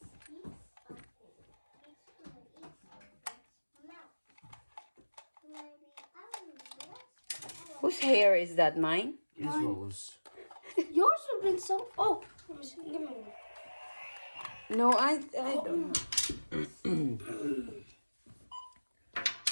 of it, it's gonna eat something. Mouth. Maybe I don't know. Whose hair is that? Mine? Izzo's. Yours have been so. Oh, let me see. Give me one. No, I don't know.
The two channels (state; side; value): inverted; both; correlation -1.00